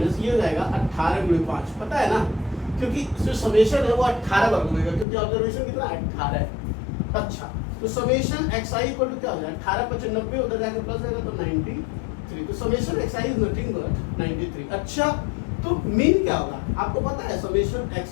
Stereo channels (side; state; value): right; drops out; at 5.1 s